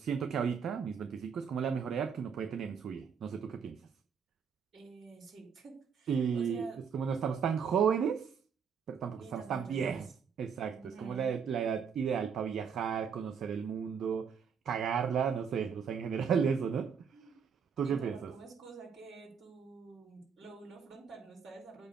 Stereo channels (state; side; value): quieter; left; 6.7 dB